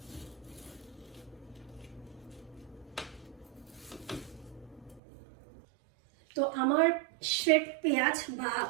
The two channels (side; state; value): left; drops out; at 5.0 s